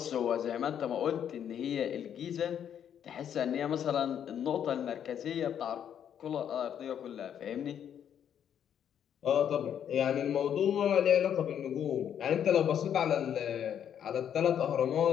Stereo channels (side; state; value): right; quieter; 9.1 dB